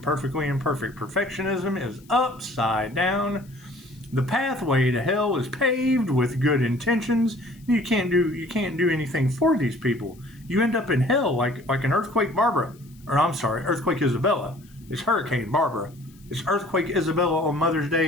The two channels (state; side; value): noise; left; hiss, 29 dB below the sound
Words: perfectly imperfect. Perfectionism is upside down. The pathway to hell is paved with good intentions. You can't do anything for these people. You end up in hell like an earthquake Barbara. Or I'm sorry, earthquake Isabella. It's Hurricane Barbara. It's earthquake Isabella on Mother's